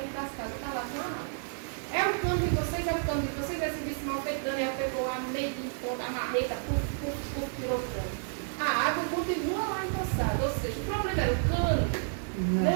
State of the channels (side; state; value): left; silent; 57 dB below the other